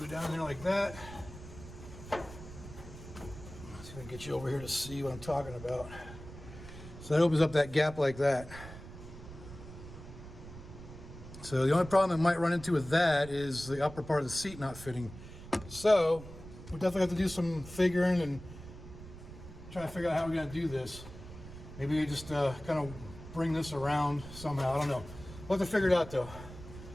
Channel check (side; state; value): right; noise; rumble, 14 dB below the sound